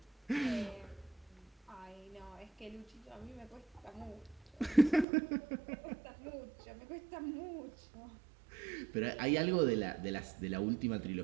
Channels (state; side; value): drops out; left; at 5.1 s